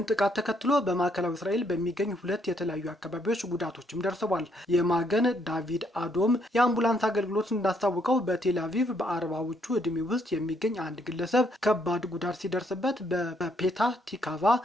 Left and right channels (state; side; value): normal; both; correlation 0.71